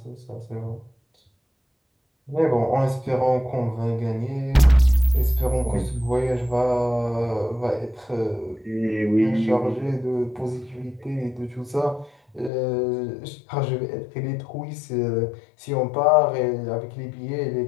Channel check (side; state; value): right; drops out; at 12.5 s